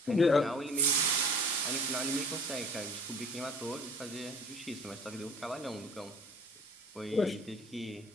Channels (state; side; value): normal; both; correlation 0.48